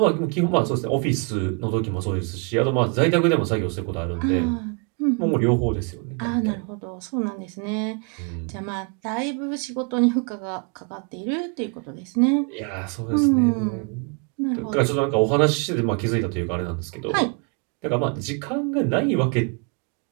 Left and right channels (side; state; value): left; quieter; 35.3 dB